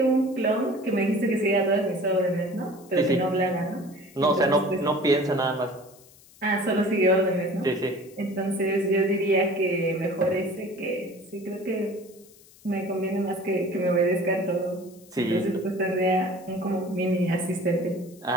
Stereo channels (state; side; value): noise; left; hiss, 25 dB below the sound